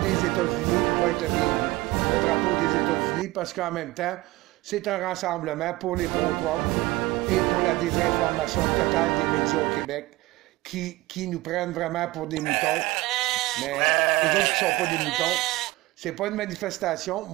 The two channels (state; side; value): quieter; left; 19.8 dB